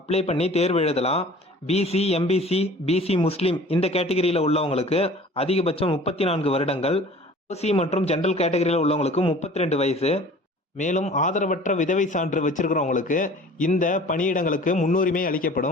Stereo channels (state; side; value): normal; both; correlation 0.46